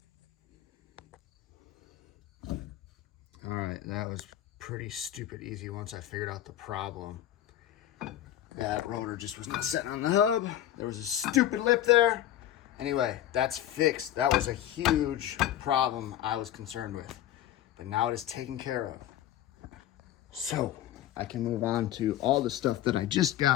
All right, that was pretty stupid easy once I figured out the problem. That rotor just was not sitting on the hub. There was a stupid lip there. Anyway, that's fixed. That was a huge problem I was concerned with. But now it is taken care of. So, I can move on to all the stuff that I just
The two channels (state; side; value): quieter; right; 12.3 dB